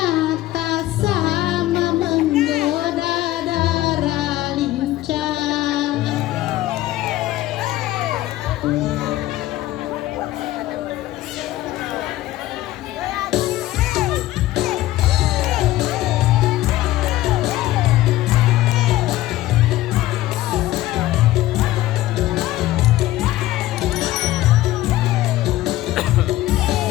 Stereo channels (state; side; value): quieter; right; 15.7 dB